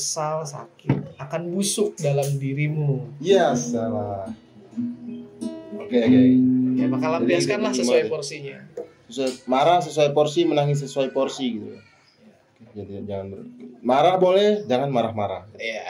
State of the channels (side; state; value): both; identical; correlation 1.00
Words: sakit, akan busuk dalam dirimu. Ya salah. Oke. Ya maka lampiaskanlah sesuai porsinya. marah sesuai porsi, menangis sesuai porsi gitu. Jadi jangan marah boleh, jangan marah-marah. Iya.